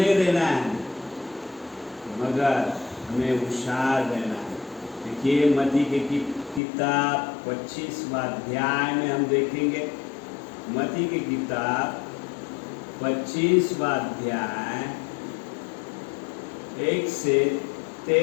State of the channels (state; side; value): drops out; right; at 6.6 s